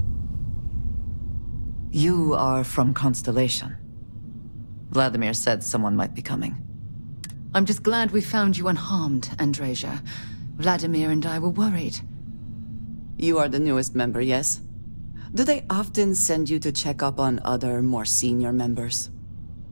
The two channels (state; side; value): inverted; both; correlation -1.00